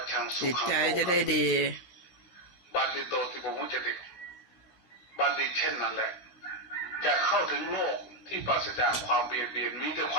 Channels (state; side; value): late; right; 16 ms